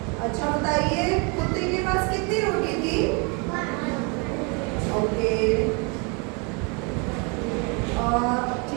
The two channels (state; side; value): quieter; left; 32.5 dB